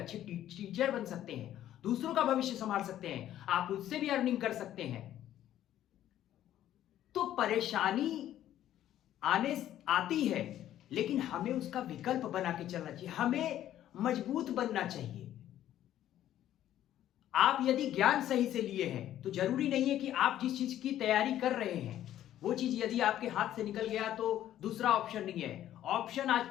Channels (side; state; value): right; quieter; 12.2 dB